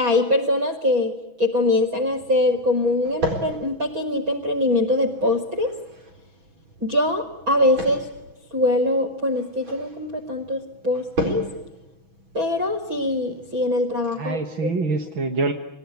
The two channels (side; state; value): left; late; 6.1 ms